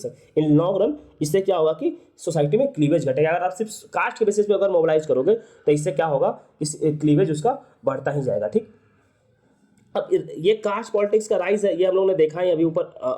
इन लॉन्ग रन इससे क्या होगा कि सोसाइटी में क्लीवेज घटेगा। अगर आप सिर्फ कास्ट के बेसिस पे अगर मोबिलाइज करोगे तो इससे क्या होगा कि क्लीवेज उसका बढ़ता ही जाएगा। ठीक, अब ये कास्ट पॉलिटिक्स का राइज है, ये हम लोगों ने देखा है। अभी ऊपर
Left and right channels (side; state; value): both; identical; correlation 1.00